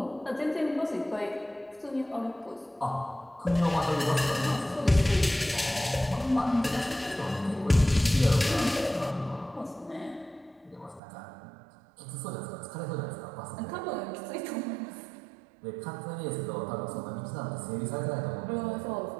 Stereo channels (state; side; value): drops out; left; at 11.0 s